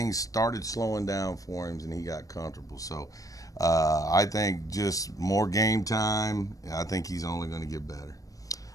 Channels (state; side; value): late; right; 0.17 ms